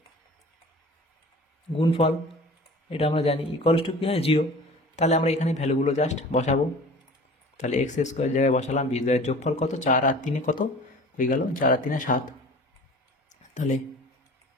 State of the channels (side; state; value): both; normal; correlation 0.42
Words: গুণফল এটা আমরা জানি ইকুয়ালস টু কী হয় 0। তাহলে আমরা এখানে ভ্যালুগুলো জাস্ট বসাবো। তাহলে x² জায়গায় বসালাম, বীজদ্বয়ের যোগফল কত, 4 আর 3 কত হয়ে গেল, 4 আর 3 7, তাহলে